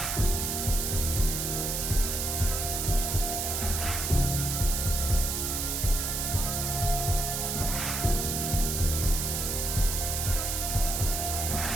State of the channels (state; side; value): noise; right; hiss, 1 dB below the sound